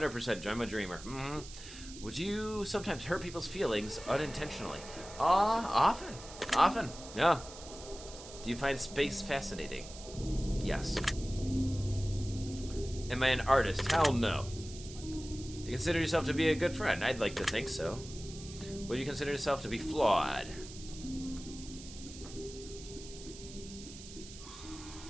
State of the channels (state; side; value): noise; right; hiss, 15 dB below the sound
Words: I'm a dreamer? Mm-hmm. Would you sometimes hurt people's feelings unintentionally? Often, yeah. Do you find space fascinating? Yes. Am I an artist? Hell no. Do you consider yourself to be a good friend? I'd like to think so. Would you consider yourself to be flawed?